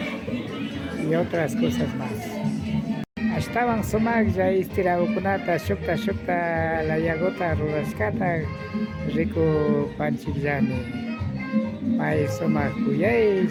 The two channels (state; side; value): identical; both; correlation 1.00